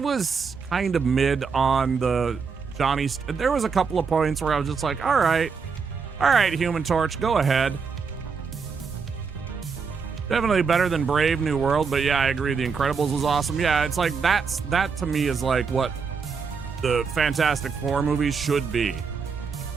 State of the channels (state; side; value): quieter; left; 5.5 dB